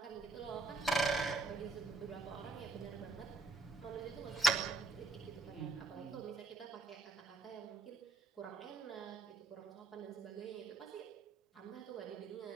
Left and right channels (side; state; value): left; quieter; 3.4 dB